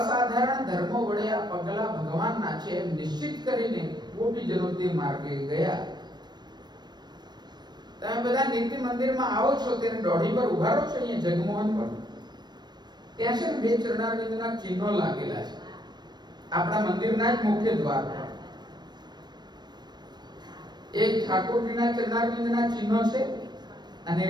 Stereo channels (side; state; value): left; late; 0.21 ms